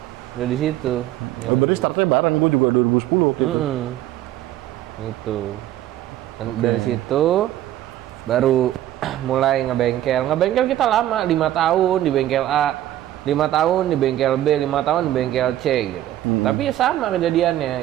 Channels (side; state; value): left; quieter; 13.3 dB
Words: Udah di situ. Oh, berarti startnya bareng, gue juga 2010 waktu itu. Itu. Dan dari situ baru mulai ngebengkel. Ngebengkel kita lama, 5 tahun di bengkel A, 5 5 tahun di bengkel B, 5 tahun di bengkel C gitu. Tapi ya sama kejadiannya